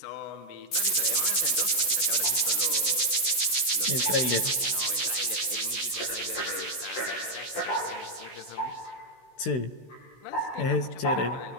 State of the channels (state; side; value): late; right; 16 ms